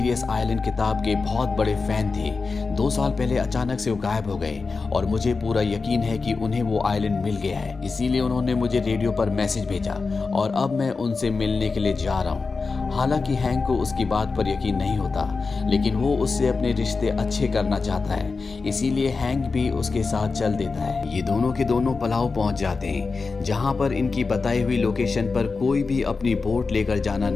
आइलैंड किताब के बहुत बड़े फैन थे। 2 साल पहले अचानक से वो गायब हो गए, और मुझे पूरा यकीन है कि उन्हें वो आइलैंड मिल गया है, इसीलिए उन्होंने मुझे रेडियो पर मैसेज भेजा, और अब मैं उनसे मिलने के लिए जा रहा हूँ। हालांकि हैंक को उसकी बात पर यकीन नहीं होता, लेकिन वो उससे अपने रिश्ते अच्छे करना चाहता है, इसीलिए हैंक भी उसके साथ चल देता है। ये दोनों के दोनों पलाव पहुंच जाते हैं, जहां पर इनकी बताई हुई लोकेशन पर कोई भी अपनी बोट लेकर जाना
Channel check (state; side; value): quieter; right; 4.3 dB